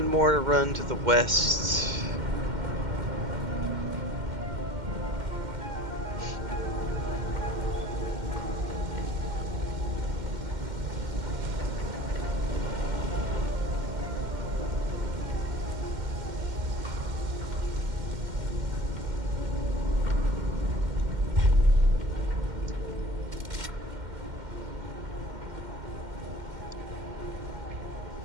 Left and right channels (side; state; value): left; late; 2.1 ms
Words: more to run to the west.